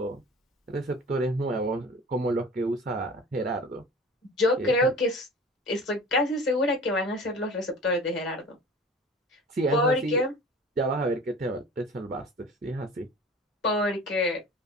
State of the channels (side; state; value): both; normal; correlation 0.40